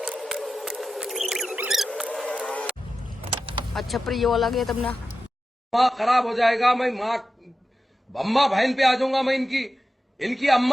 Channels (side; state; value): both; normal; correlation 0.92